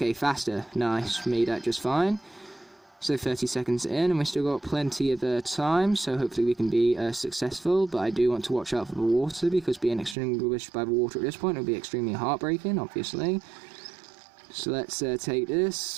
faster, nice, made that just fine. So 30 seconds in, and we've still got plenty of time, so hopefully we can be successful, but I do want to watch out for the water, because being extinguished by the water at this point will be extremely heartbreaking, obviously. So let's take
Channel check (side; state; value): left; drops out; at 10.2 s